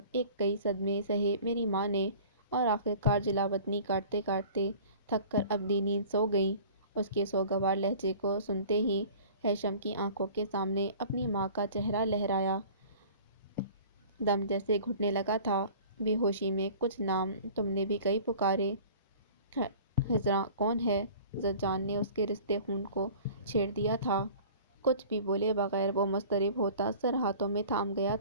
ایک کئی صدمے سہے میری ماں نے اور آخرکار جلاوطنی کاٹتے کاٹتے تھک کر اپنی نیند سو گئیں۔ اس کے سوگوار لہجے کو سنتے ہی ہیثم کی آنکھوں کے سامنے اپنی ماں کا چہرہ لہرایا۔ دم جیسے گھٹنے لگا تھا۔ بے ہوشی میں کچھ نام تم نے بھی کئی پکارے۔ خضراں کون ہے؟ زجان نے اس کے رستے خون کو چھیڑ دیا تھا۔ کچھ بھی بولے بغیر وہ مضطرب ہوتا سر ہاتھوں میں تھام گیا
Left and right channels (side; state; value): both; inverted; correlation -0.45